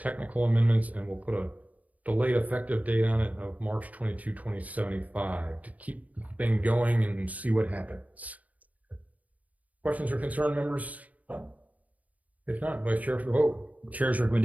amendments, and we'll put a delayed effective date on it of March 22, 2075 to keep the thing going and see what happens. Questions or concern, members? If not, Vice Chair for the vote. Chair's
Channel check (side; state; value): left; late; 0.073 ms